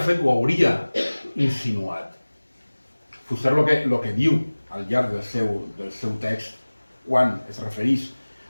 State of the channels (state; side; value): inverted; both; correlation -1.00